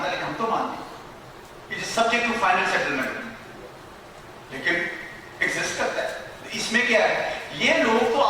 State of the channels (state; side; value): identical; both; correlation 1.00